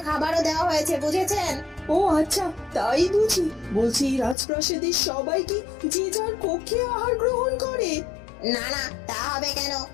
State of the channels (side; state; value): right; drops out; at 4.4 s